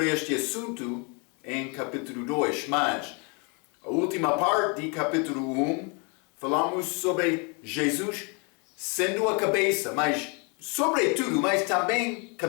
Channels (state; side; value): quieter; right; 33.7 dB